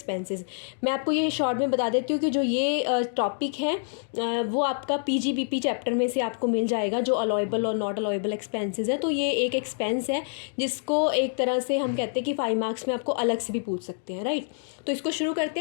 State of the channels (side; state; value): right; silent; digital silence